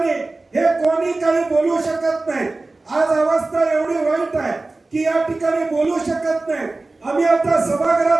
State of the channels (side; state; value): left; quieter; 3.2 dB